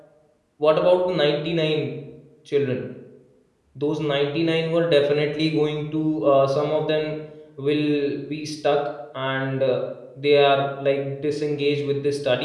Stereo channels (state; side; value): identical; both; correlation 1.00